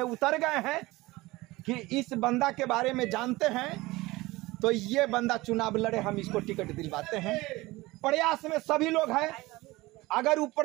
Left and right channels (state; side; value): quieter; left; 20.5 dB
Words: उतर गए हैं कि इस बंदा के बारे में जानते हैं तो ये बंदा चुनाव लड़े, हम इसको टिकट दिलवाते हैं। प्रयास में सभी लोग हैं। अगर